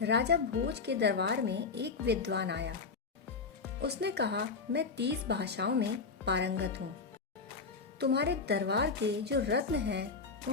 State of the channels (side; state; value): right; quieter; 4.7 dB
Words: राजा भोज के दरबार में एक विद्वान आया। उसने कहा, मैं 30 भाषाओं में पारंगत हूँ। तुम्हारे दरबार के जो रत्न हैं